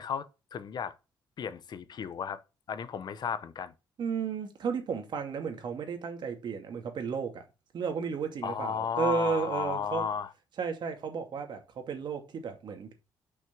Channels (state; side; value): normal; both; correlation 0.48